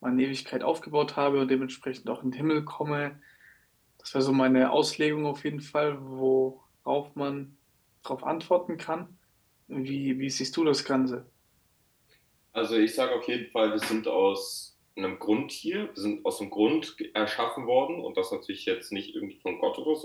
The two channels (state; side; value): identical; both; correlation 1.00